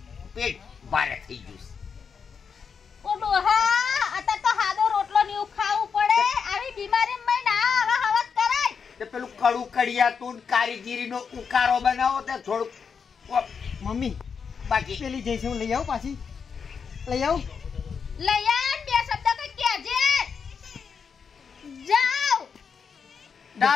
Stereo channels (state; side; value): quieter; right; 6.2 dB